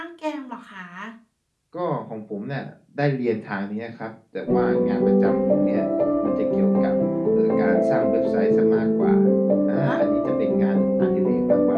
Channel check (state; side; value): identical; both; correlation 1.00